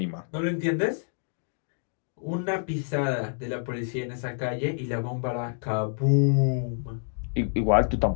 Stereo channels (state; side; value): silent; right; digital silence